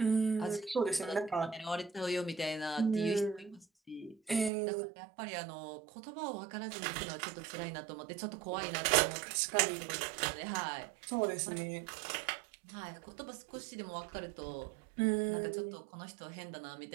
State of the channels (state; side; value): drops out; left; at 4.5 s